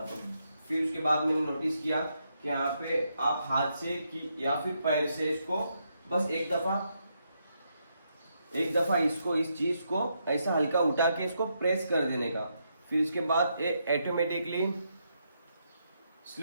तो फिर उसके बाद मैंने नोटिस किया कि यहाँ पे आप हाथ से या फिर पैर से इसको बस एक दफा इसको इस चीज को ऐसा हल्का उठा के इसको प्रेस कर देने का, फिर उसके बाद ये ऑटोमेटिकली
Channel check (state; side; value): inverted; both; correlation -0.79